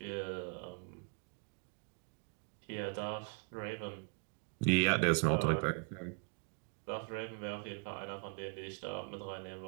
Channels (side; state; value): left; quieter; 37.1 dB